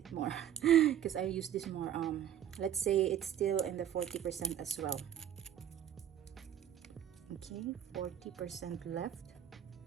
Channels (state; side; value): quieter; left; 10.2 dB